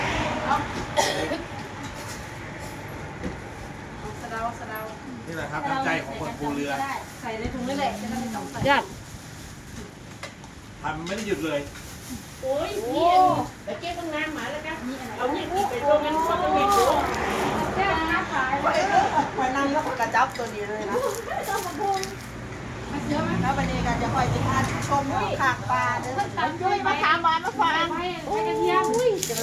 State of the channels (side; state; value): both; identical; correlation 1.00